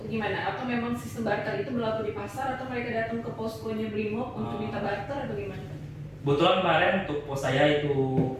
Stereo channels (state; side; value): identical; both; correlation 1.00